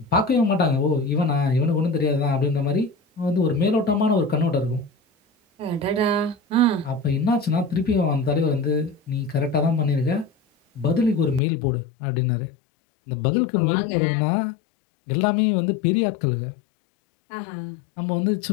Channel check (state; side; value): drops out; right; at 11.4 s